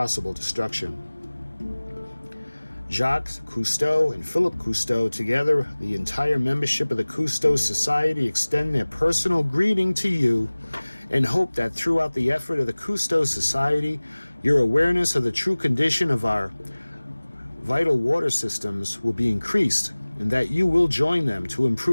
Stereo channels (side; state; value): both; inverted; correlation -1.00